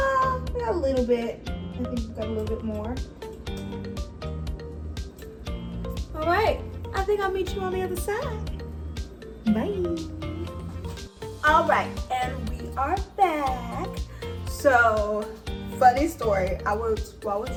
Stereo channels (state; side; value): identical; both; correlation 1.00